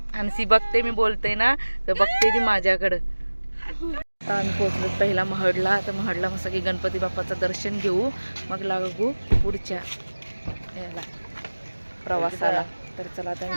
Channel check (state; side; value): inverted; both; correlation -1.00